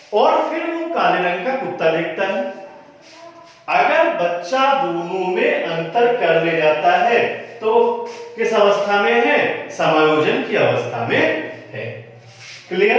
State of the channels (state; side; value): identical; both; correlation 1.00